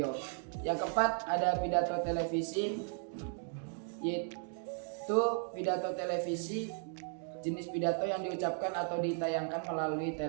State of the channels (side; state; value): left; silent; 54 dB below the other